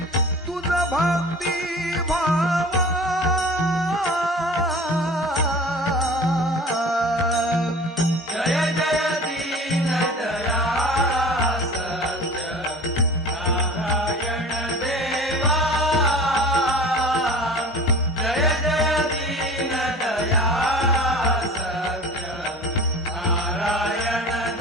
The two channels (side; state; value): both; normal; correlation 0.40